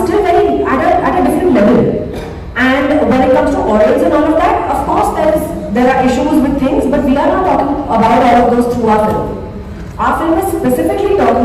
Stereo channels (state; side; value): identical; both; correlation 1.00